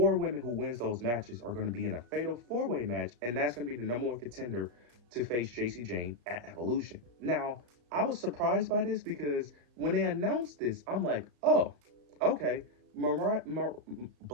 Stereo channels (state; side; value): late; left; 34 ms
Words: women who wins those matches are going to be in a fatal 4-way match, and that's going to be the #1 contender to face JC Jane at Evolution. Now, I was surprised by this because when they announced this, I'm like, oh, okay,